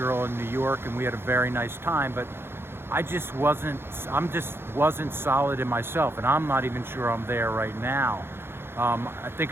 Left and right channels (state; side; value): late; left; 0.11 ms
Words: in New York and we had a very nice time, but I just wasn't solid in myself, and I'm not even sure I'm there right now. I